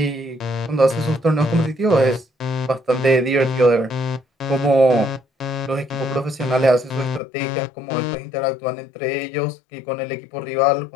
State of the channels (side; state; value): right; drops out; at 7.2 s